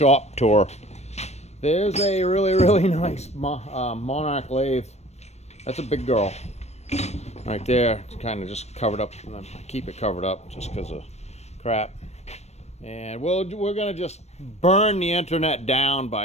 tour. There's a really nice Monarch lathe. That's a big girl. Right there, it's kind of just covered up. I keep it covered up just because of crap. And we're gonna just burn the internet down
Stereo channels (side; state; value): right; late; 0.31 ms